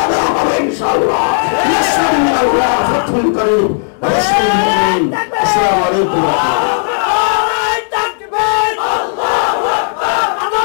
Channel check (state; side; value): silent; right; digital silence